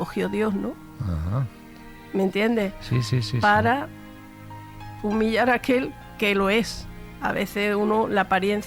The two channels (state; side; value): identical; both; correlation 1.00